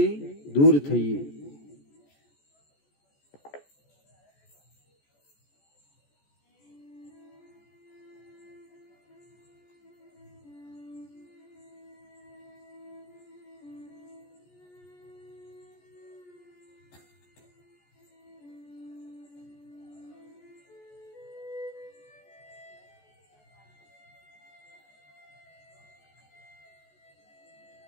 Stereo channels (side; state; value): right; late; 14 ms